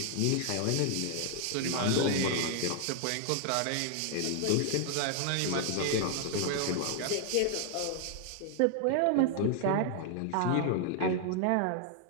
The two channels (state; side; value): different; both; correlation 0.00